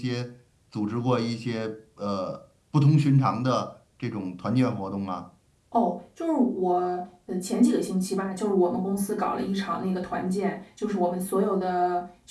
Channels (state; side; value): identical; both; correlation 1.00